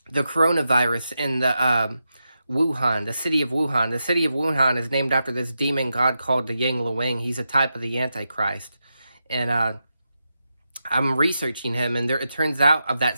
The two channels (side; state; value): both; inverted; correlation -0.88